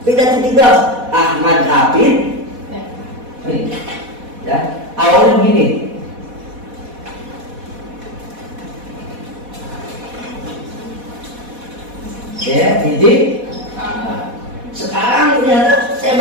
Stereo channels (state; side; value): late; left; 4.1 ms